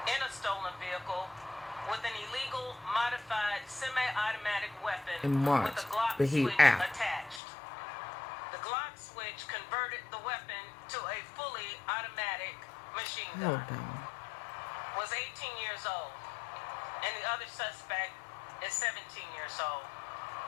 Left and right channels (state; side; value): drops out; right; at 7.4 s